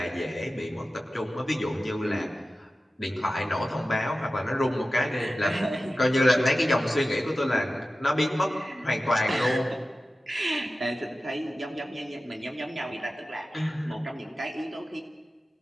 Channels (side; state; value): both; normal; correlation 0.95